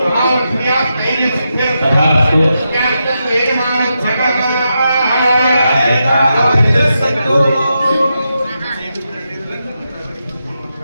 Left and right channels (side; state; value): both; inverted; correlation -0.86